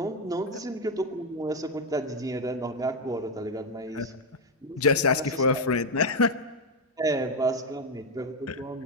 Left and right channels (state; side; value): normal; both; correlation 0.06